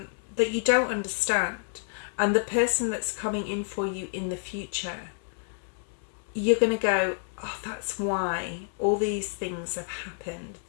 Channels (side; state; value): right; silent; 59 dB below the other